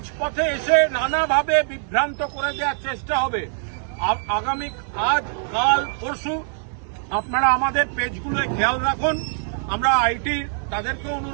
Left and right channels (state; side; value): silent; left; 61 dB below the other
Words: এসে নানাভাবে বিভ্রান্ত করে দেওয়ার চেষ্টা হবে। আগামী আজ, কাল, পরশু আপনারা আমাদের পেজগুলোয় খেয়াল রাখুন। আমরা আইটি তাদেরকে